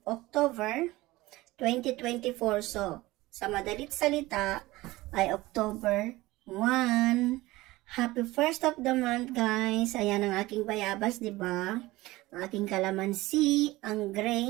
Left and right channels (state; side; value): quieter; left; 19.1 dB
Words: October 2024. So, sa madalit salita ay October 1. Happy 1st of the month guys. Ayan ang aking bayabas, diba? Ang aking kalamansi, ang